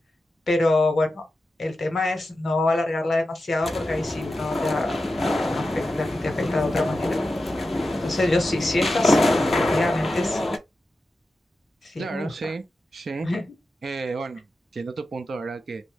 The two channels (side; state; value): both; normal; correlation 0.91